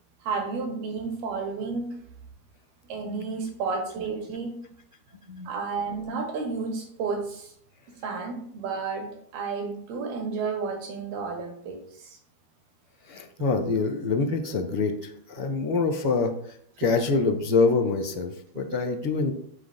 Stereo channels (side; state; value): left; late; 12 ms